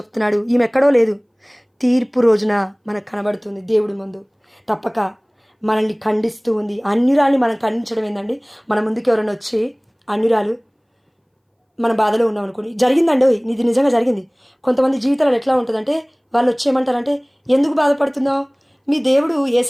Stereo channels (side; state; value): both; identical; correlation 1.00